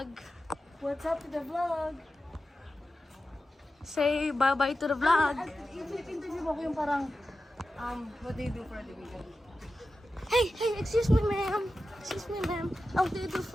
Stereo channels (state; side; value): normal; both; correlation 0.92